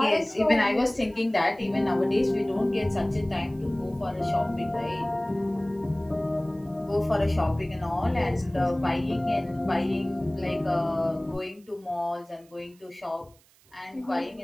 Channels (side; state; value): right; noise; hiss, 30 dB below the sound